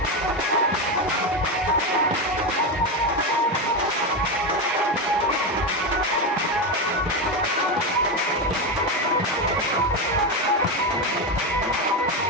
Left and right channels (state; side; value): normal; both; correlation 0.13